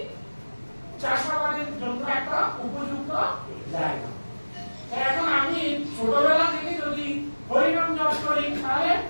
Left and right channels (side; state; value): both; inverted; correlation -1.00